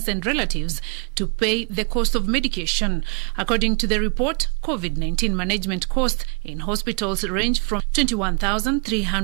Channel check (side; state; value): left; quieter; 33.6 dB